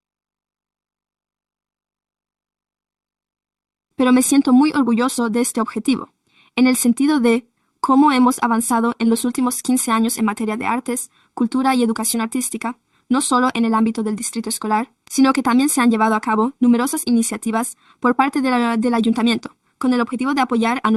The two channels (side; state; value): both; identical; correlation 1.00